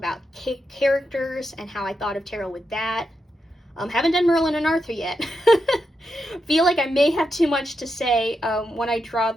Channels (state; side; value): normal; both; correlation 0.85